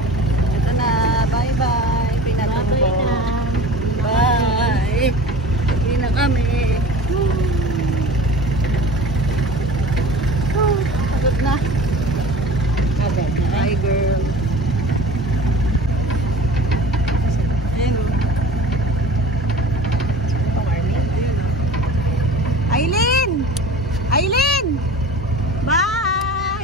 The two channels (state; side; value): normal; both; correlation 0.39